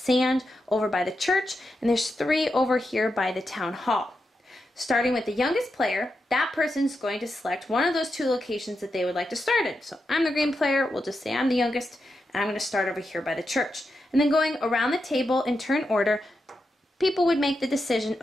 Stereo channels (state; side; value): normal; both; correlation 0.87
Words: over by the church, and there's 3 over here by the town hall. Starting with the youngest player, that person's going to select one of those 2 locations that they would like to start in. So I'm the green player, we'll just say I'm the youngest, and I'm going to start over here by the church. And then going around the table in turn order, people would make the decision